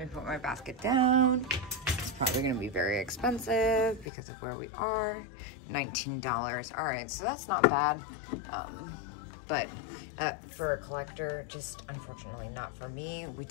put my basket down. It's probably gonna be very expensive because of where we are. $19. All right, so that's not bad. But for a collector, just unfortunately not for me. We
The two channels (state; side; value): drops out; right; at 4.0 s